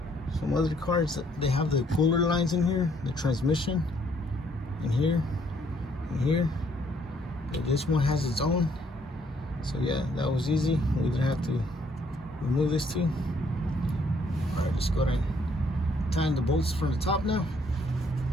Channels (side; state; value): both; normal; correlation 0.67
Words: Some other cars, they have the puller lines in here, the transmission in here and here. But this one has its own. So yeah, that was easy. We didn't have to remove this too. Alright, let's go ahead and tighten the bolts from the top now.